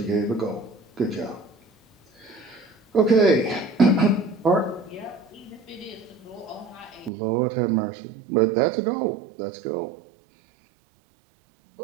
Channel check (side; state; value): left; drops out; at 7.1 s